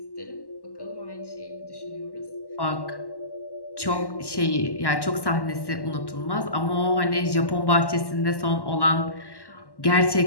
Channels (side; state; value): right; late; 1.1 ms